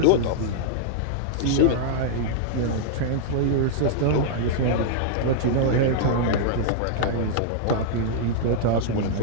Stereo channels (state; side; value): different; both; correlation -0.01